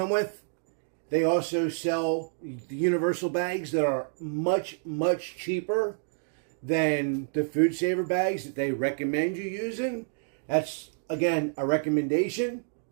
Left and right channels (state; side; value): silent; left; digital silence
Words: with, they also sell the universal bags that are much, much cheaper than the Food Saver bags that they recommend you using. That's, again, a recommendation.